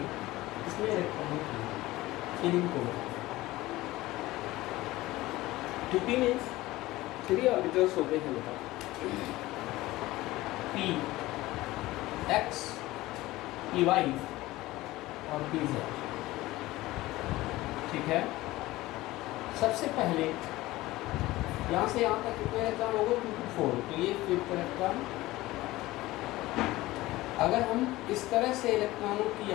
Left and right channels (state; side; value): quieter; right; 18.1 dB